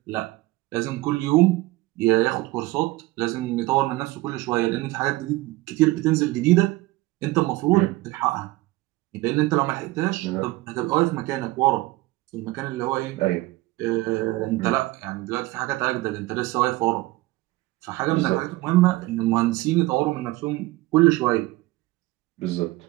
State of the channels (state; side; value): quieter; left; 19.5 dB